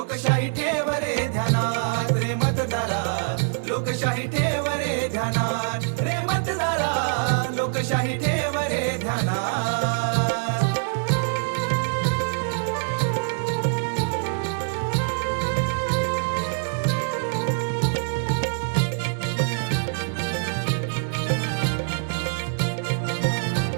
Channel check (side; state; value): left; silent; digital silence